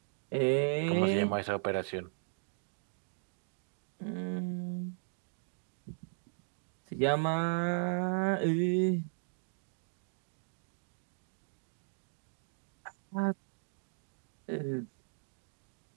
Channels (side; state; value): left; silent; digital silence